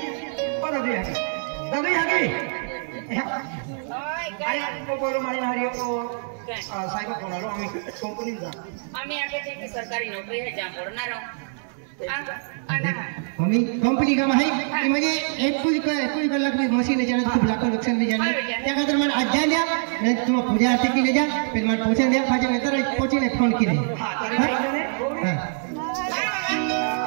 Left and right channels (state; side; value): silent; left; 62 dB below the other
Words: ओ दादी हागी आई को बोलो मारी मारी को साहेब फोन आलो आम्ही कंपनी जा आम्ही आगे थे कि सरकारी नौकरी है जहाँ पढ़ना रहो मम्मी कंपनी का है कि मुझे एक कुछ कलाक भी मशीन ले जाना खूब लाखों नुकसान में जाना त्या खातिर मैं आज जा लिया मैं तुम पूजा आरती की ले जा फिर मैं पहुंचा दिया फाजे में तरह पहुंची ने फोन की नहीं हां